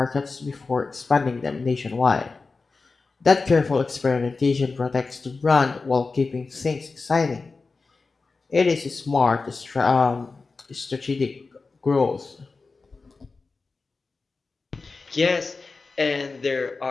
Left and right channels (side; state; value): right; quieter; 4.0 dB